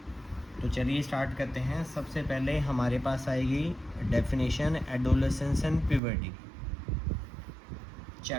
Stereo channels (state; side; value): drops out; left; at 6.0 s